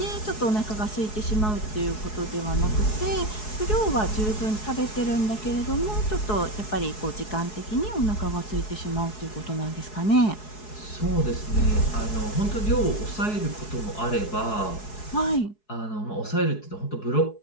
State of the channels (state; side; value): late; right; 4.7 ms